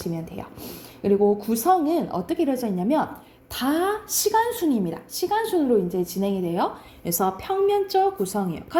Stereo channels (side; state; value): both; identical; correlation 1.00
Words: 돼요. 그리고 구성은 어떻게 이루어져 있냐면 다 시간순입니다. 시간순으로 이제 진행이 돼요. 그래서 평면적 구성이에요.